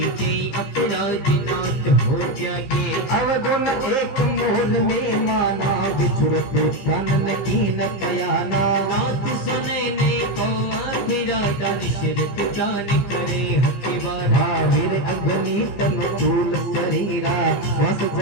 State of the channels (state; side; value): late; right; 15 ms